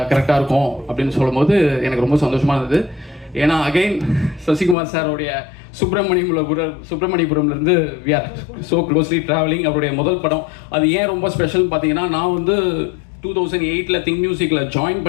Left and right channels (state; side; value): drops out; right; at 4.8 s